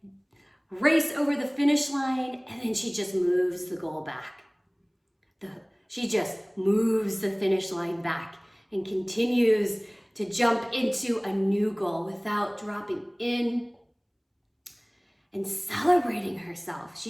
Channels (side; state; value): both; identical; correlation 1.00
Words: race over the finish line, and then she just moves the goal back. She just moves the finish line back and continues to jump into a new goal without dropping in and celebrating herself.